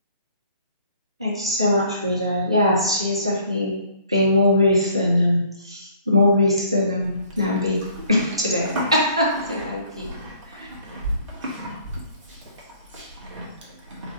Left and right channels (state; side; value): inverted; both; correlation -0.58